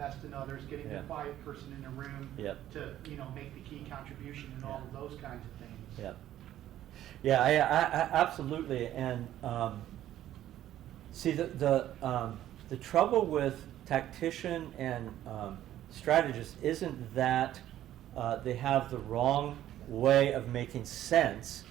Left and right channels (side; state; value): left; quieter; 12.5 dB